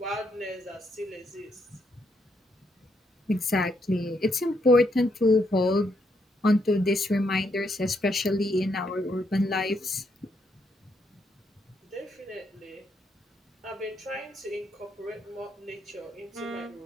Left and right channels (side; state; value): both; normal; correlation 0.76